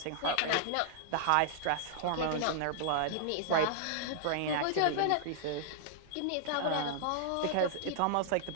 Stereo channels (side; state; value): both; different; correlation -0.01